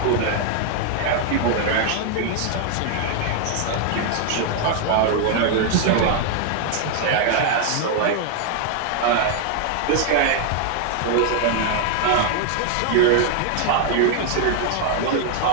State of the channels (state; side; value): different; both; correlation 0.00